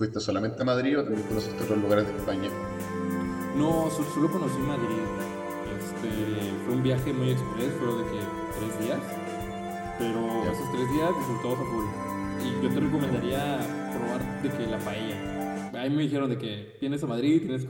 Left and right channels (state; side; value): identical; both; correlation 1.00